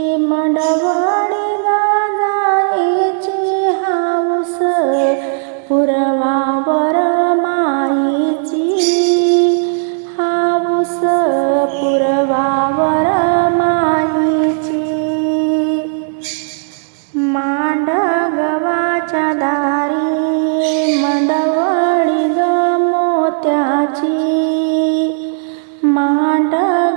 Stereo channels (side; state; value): left; silent; digital silence